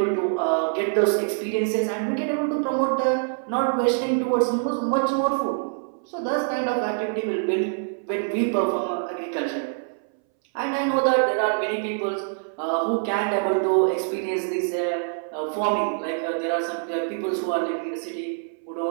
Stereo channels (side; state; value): left; silent; 62 dB below the other